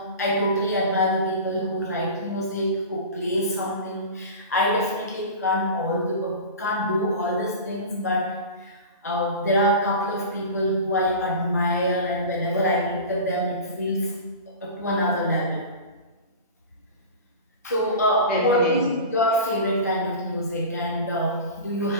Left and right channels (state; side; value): inverted; both; correlation -0.33